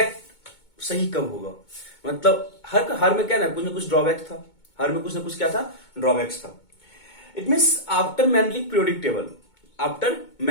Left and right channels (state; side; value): late; right; 2.2 ms